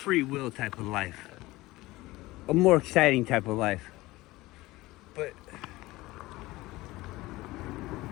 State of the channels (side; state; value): right; quieter; 19.3 dB